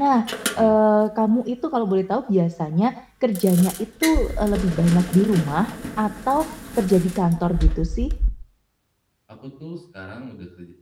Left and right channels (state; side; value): identical; both; correlation 1.00